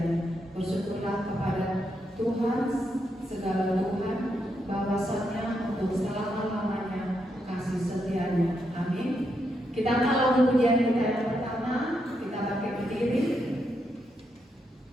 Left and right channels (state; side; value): normal; both; correlation 0.81